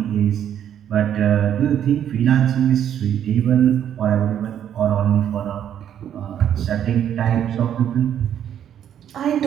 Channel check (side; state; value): left; quieter; 9.8 dB